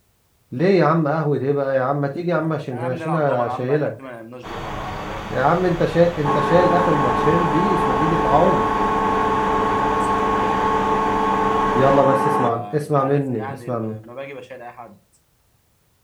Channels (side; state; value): both; identical; correlation 1.00